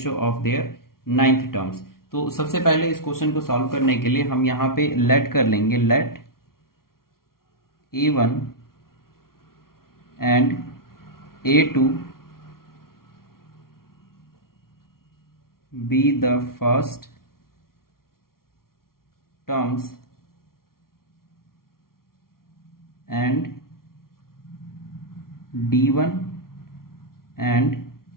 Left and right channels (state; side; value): late; right; 0.93 ms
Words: of their ninth terms. तो सबसे पहले इस क्वेश्चन को सॉल्व करने के लिए हम यहाँ पे लेट कर लेंगे, let a1 and a2 be the first terms and d1 and